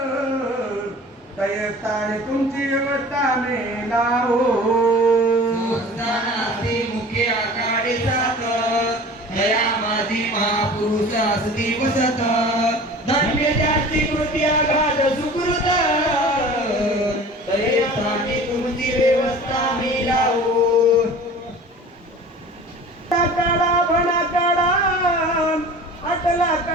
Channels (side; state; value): both; normal; correlation 0.41